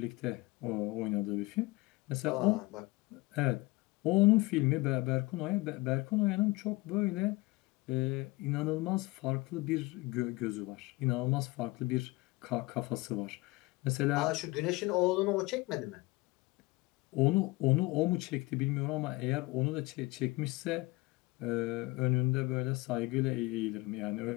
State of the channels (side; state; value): right; quieter; 22.5 dB